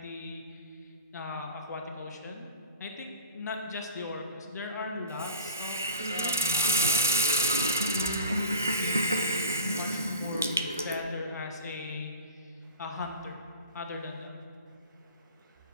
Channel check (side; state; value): both; inverted; correlation -0.36